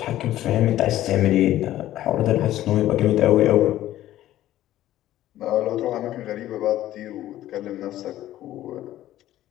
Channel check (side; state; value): right; quieter; 13.8 dB